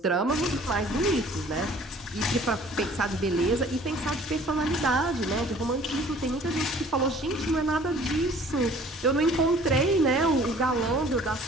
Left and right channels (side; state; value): both; normal; correlation 0.52